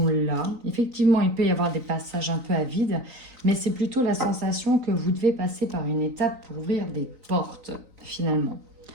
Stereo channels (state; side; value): late; left; 3.9 ms